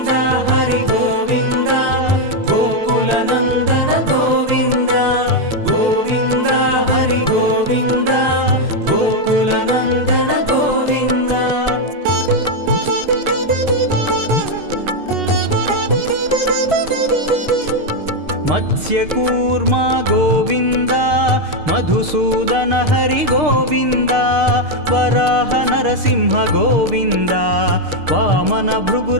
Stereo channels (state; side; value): late; left; 6.6 ms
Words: హరి గోవింద, గోకుల నందన గోవింద. గోవింద హరి గోవింద, గోకుల నందన గోవింద. మత్స్యకూర్మ గోవింద, మధుసూదన హరి గోవింద, వరాహ నరసింహ గోవింద, వామన